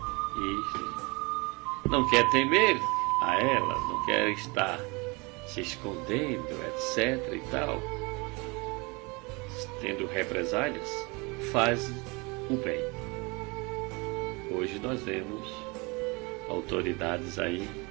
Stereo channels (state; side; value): quieter; left; 27.7 dB